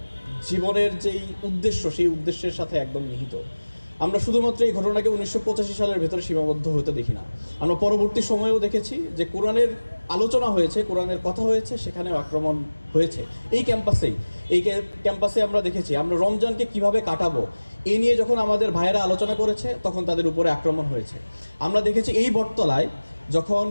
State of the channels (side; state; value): both; inverted; correlation -1.00